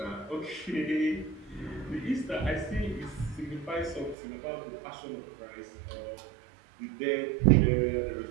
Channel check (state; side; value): drops out; left; at 4.2 s